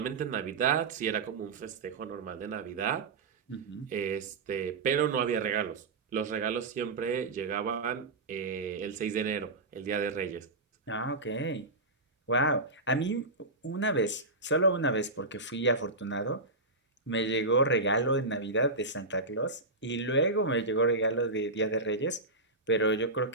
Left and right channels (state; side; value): quieter; left; 3.1 dB